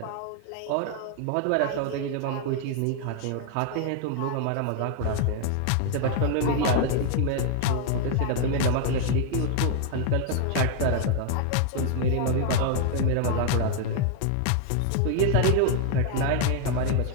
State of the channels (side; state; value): both; different; correlation 0.00